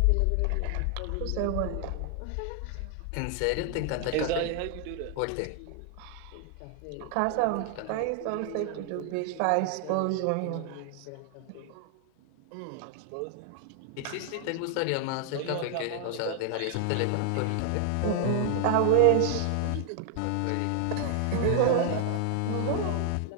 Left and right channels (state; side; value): different; both; correlation 0.00